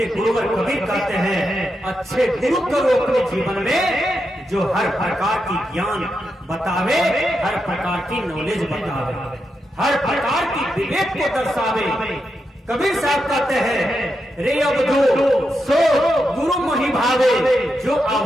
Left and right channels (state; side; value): normal; both; correlation 0.85